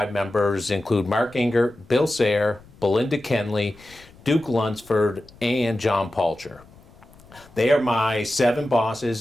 members include Mark Ingert, Bill Sayre, Belinda Kenley, Duke Lunsford, and John Palcher. They are my 7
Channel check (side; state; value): left; noise; rumble, 25 dB below the sound